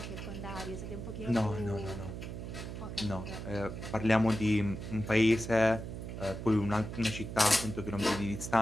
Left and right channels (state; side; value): noise; right; hum, 8 dB below the sound